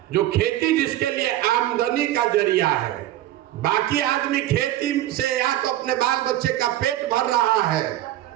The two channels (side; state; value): left; quieter; 14.1 dB